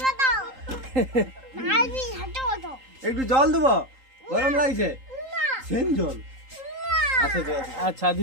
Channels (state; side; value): late; left; 3.8 ms